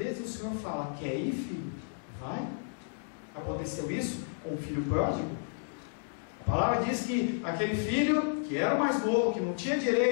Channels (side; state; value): right; silent; digital silence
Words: o Senhor fala: quer ir, filho? Vai. Aconteceu isso com o filho pródigo. A palavra diz que aquele filho, que era o mais novo, que não tinha